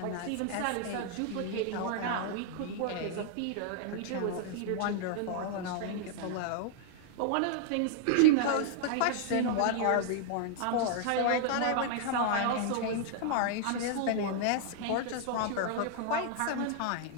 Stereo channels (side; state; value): both; different; correlation -0.01